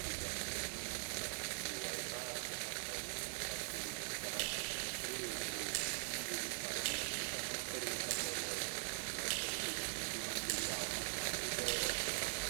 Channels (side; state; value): left; silent; digital silence